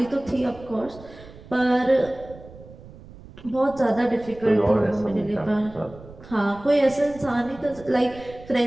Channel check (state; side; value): noise; right; rumble, 19 dB below the sound